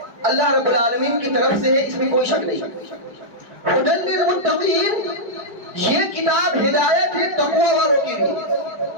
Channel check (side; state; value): left; late; 4.9 ms